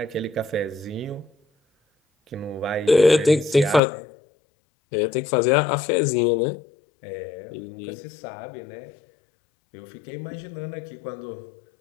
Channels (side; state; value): right; drops out; at 3.8 s